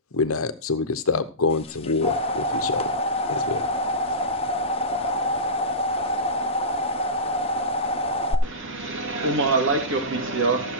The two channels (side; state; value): both; normal; correlation -0.19